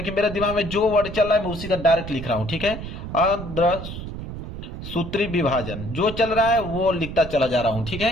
मेरे दिमाग में जो वर्ड चल रहा है मैं उसी का डायरेक्ट लिख रहा हूं, ठीक है। अर्धसूत्री विभाजन जो चल रहा है वो लिखता चला जा रहा हूं, ठीक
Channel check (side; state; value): right; noise; rumble, 9 dB below the sound